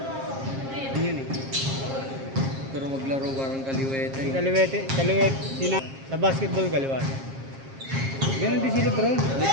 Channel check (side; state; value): left; late; 7.5 ms